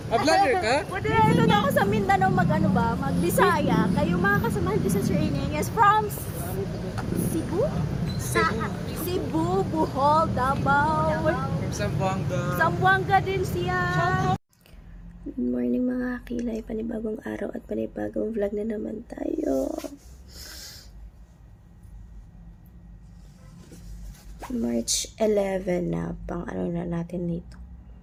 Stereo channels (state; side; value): identical; both; correlation 1.00